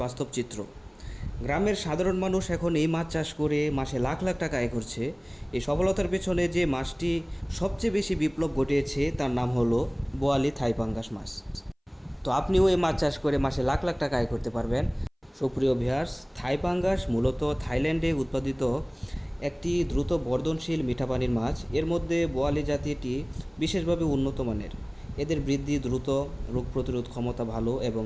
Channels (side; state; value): both; identical; correlation 1.00